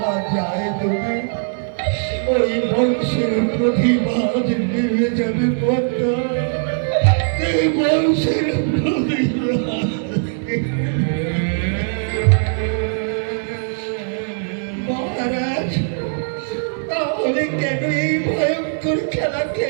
যায় দেবে, ওই বংশের প্রতিবাদ নেমে যাবে পদ্মা। এই বংশের প্রতিবাদ। মহারাজ, তাহলে কেন এই ভয়ঙ্কর খেলা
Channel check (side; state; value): left; silent; 66 dB below the other